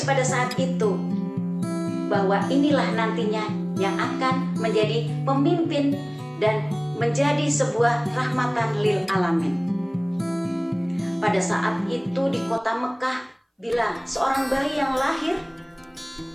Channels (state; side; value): identical; both; correlation 1.00